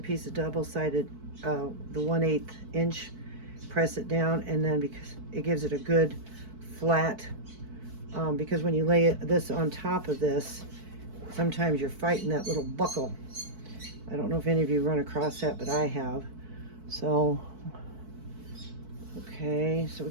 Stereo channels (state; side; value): late; left; 4.6 ms